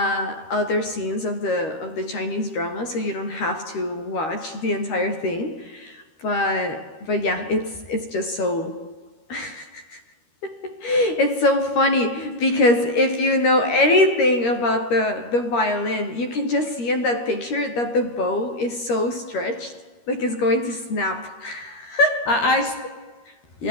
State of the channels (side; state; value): right; late; 13 ms